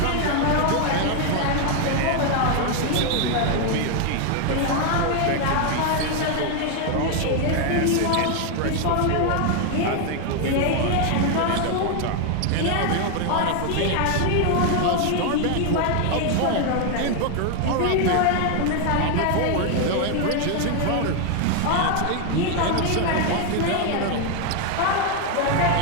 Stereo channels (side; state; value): both; different; correlation 0.01